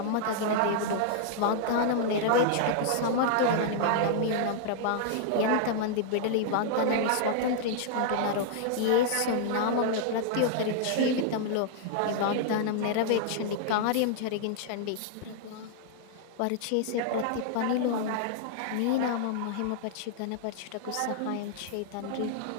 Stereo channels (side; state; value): both; different; correlation -0.01